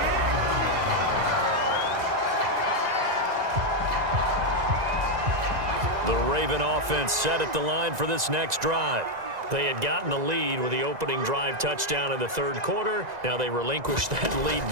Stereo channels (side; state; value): left; late; 1.9 ms